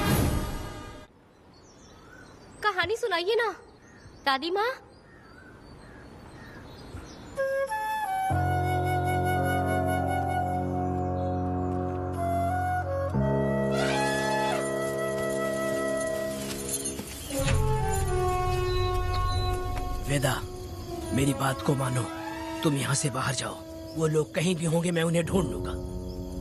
कहानी सुनाइए ना दादी माँ। वेदा, मेरी बात को मानो, तुम यहाँ से बाहर जाओ। वो लोग कहीं भी होंगे, मैं उन्हें ढूंढ लूंगा।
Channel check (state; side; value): identical; both; correlation 1.00